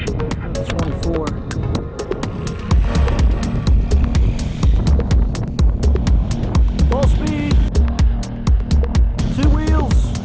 24. Full speed. Two wheels.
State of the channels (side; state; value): both; identical; correlation 1.00